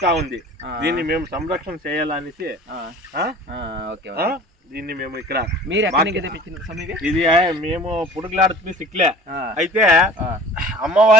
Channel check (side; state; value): both; normal; correlation 0.43